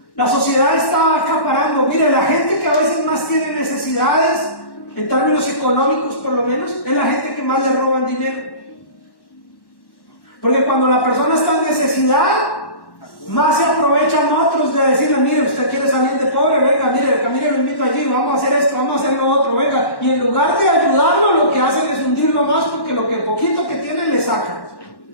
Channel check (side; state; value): right; late; 1.1 ms